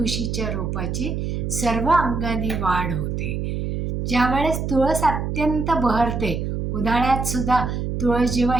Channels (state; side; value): noise; right; hum, 2 dB below the sound